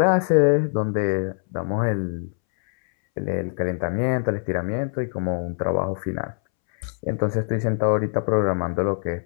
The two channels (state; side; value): silent; right; 63 dB below the other